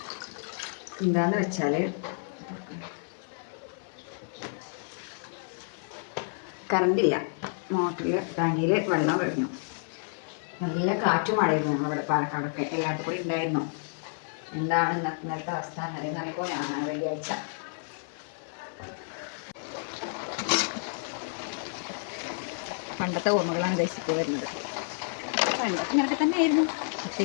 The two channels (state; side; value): silent; right; 58 dB below the other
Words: എന്താന്ന് വെച്ചാൽ കറണ്ടില്ല. മോട്ടറിൽ ടാങ്കിയിൽ വെള്ളം കഴിഞ്ഞു. നല്ല കാറ്റും മഴയായിരുന്നു ഞങ്ങളുടെ പാലക്കാടൊക്കെ. എല്ലായിടത്തും കൂടി ഉണ്ടായിരുന്നു. എന്താണ് ഇന്നത്തെ അവസ്ഥ എന്നറിയുമ്പോൾ ഞാൻ വെള്ളിയാഴ്ച പണ്ടത്തെ ഓർമ്മകളാണ് ഗൈസ് ഇപ്പോൾ വരുന്നത്. പണ്ടൊക്കെ ഇങ്ങനൊക്കെ തന്നെ ആയിരുന്നു, പക്ഷെ